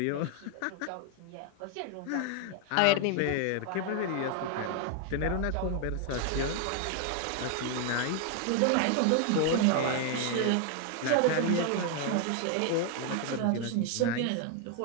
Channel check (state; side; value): different; both; correlation 0.00